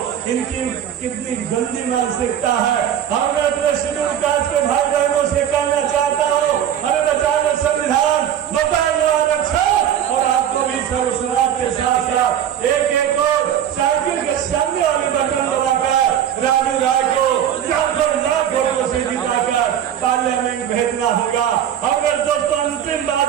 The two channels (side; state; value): left; quieter; 9.8 dB